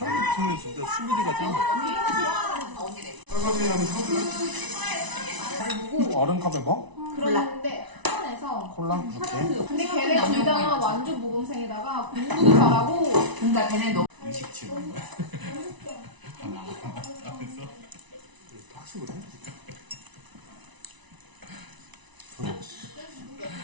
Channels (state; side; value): late; left; 1.0 ms